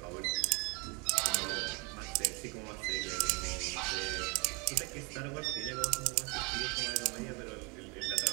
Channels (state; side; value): quieter; left; 30.6 dB